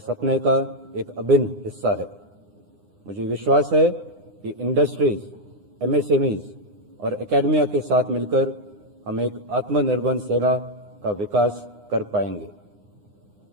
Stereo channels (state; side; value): late; left; 9.8 ms